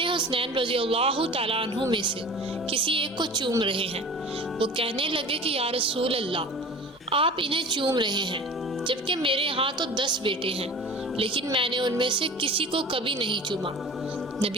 حسنین رضی اللہ تعالیٰ عنہ میں سے کسی ایک کو چوم رہے ہیں۔ وہ کہنے لگے کہ یا رسول اللہ، آپ انہیں چوم رہے ہیں جبکہ میرے ہاں تو 10 بیٹے ہیں، لیکن میں نے ان میں سے کسی کو کبھی نہیں چوما۔ نبی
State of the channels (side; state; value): both; normal; correlation 0.39